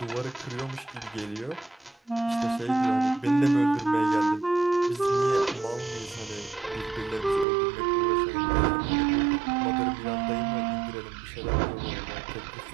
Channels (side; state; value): left; drops out; at 7.5 s